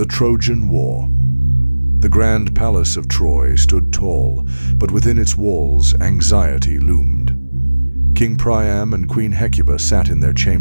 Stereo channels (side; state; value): both; inverted; correlation -1.00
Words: Trojan War. The grand palace of Troy stood tall, but within its walls anxiety loomed. King Priam and Queen Hecuba sat in their